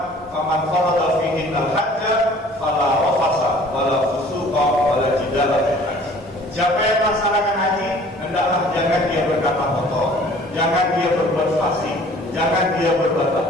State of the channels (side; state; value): both; normal; correlation 0.51